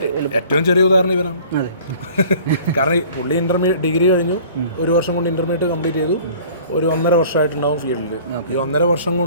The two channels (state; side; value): inverted; both; correlation -0.49